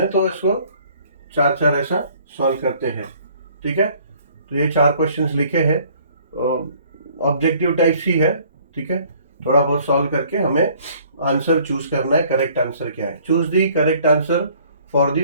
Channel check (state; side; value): inverted; both; correlation -0.57